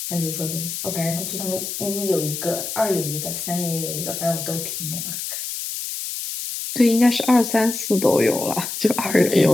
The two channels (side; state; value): left; noise; hiss, 5 dB below the sound